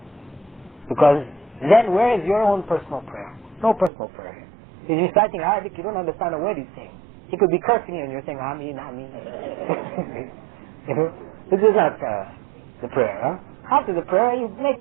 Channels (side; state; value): left; drops out; at 3.9 s